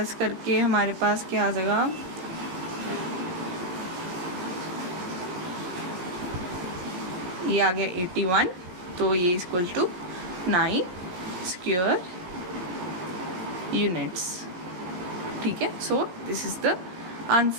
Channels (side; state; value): left; late; 17 ms